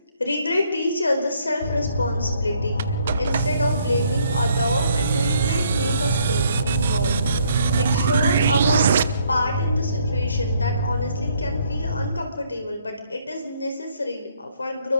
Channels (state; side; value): inverted; both; correlation -0.67